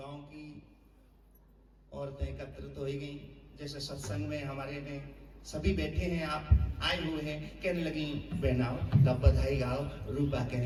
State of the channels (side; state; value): both; identical; correlation 1.00